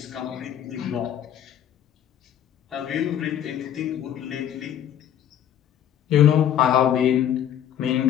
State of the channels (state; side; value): quieter; right; 10.1 dB